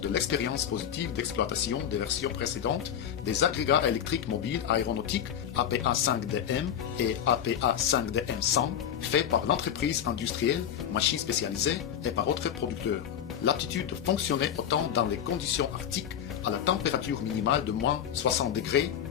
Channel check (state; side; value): quieter; right; 9.4 dB